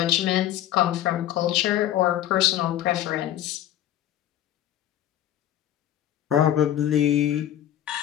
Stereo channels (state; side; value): quieter; right; 12.1 dB